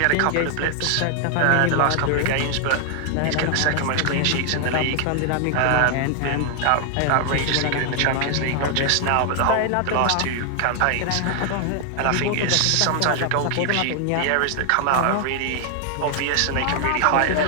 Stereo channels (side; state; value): both; different; correlation 0.00